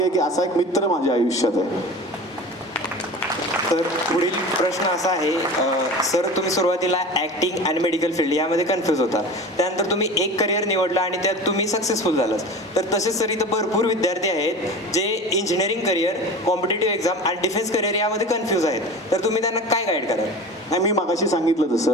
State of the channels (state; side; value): normal; both; correlation 0.34